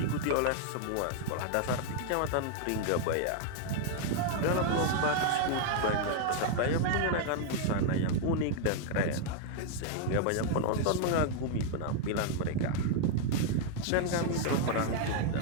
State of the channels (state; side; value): different; both; correlation 0.00